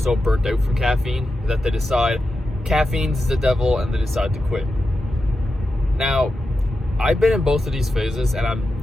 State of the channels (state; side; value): normal; both; correlation 0.90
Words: burnt out from caffeine that they decide caffeine's the devil and they decide to quit. Now, I've been in both of these phases, and I'm